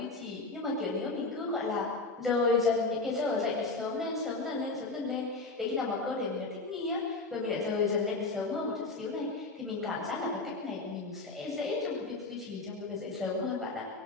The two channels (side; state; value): right; quieter; 3.5 dB